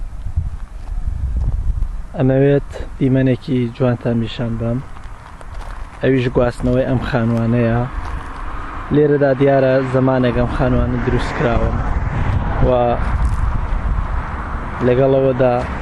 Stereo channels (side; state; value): both; identical; correlation 1.00